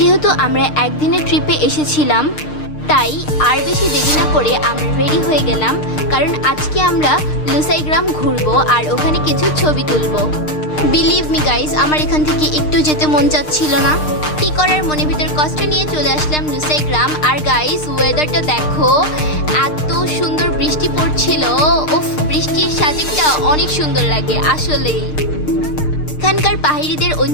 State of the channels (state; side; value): late; right; 6.6 ms